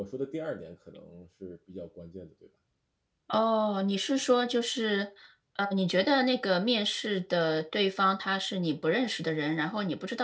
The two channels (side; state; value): both; identical; correlation 1.00